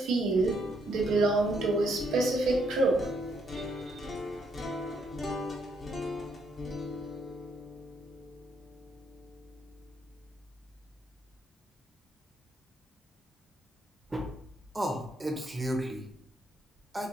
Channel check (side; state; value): both; normal; correlation 0.74